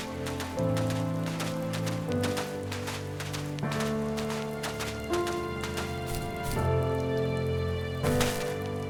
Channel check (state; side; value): identical; both; correlation 1.00